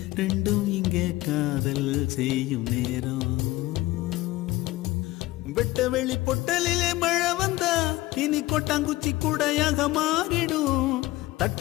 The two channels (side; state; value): right; quieter; 18.1 dB